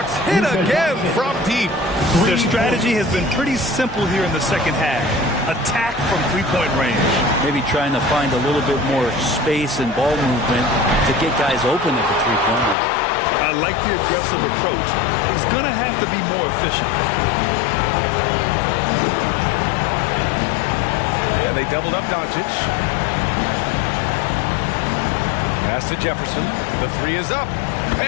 hit again from deep. Their strategy has been pretty simple here in the second half. Attack from three-point range. Maybe trying to find a little bit more space and ball movement to get guys open at the three-point line. I like the aggressive approach. He's going to have to be more efficient. And they doubled up Doncic. Pass to Jefferson. The three is up.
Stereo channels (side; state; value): right; drops out; at 12.8 s